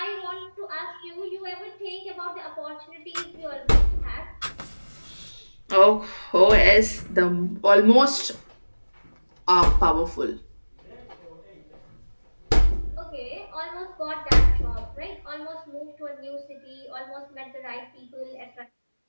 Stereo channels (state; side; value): inverted; both; correlation -1.00